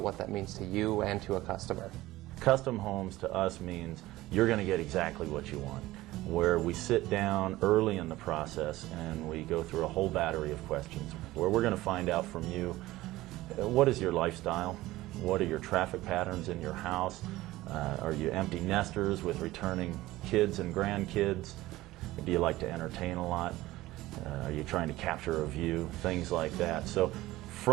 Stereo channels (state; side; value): quieter; left; 17.4 dB